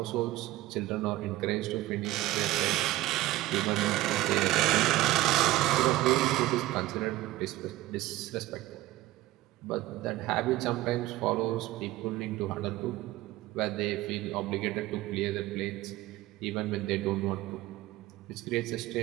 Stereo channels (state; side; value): quieter; left; 16.5 dB